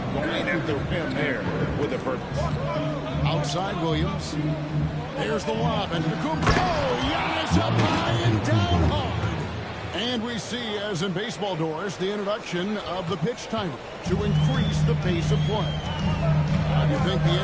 going at the rim there with a purpose. Outside Williams. There's the lob. And Giannis up high and down hard. And we see, as in baseball doors, the introduction of the pitch timer to increase the pace of play. How do you think the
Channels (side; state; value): both; identical; correlation 1.00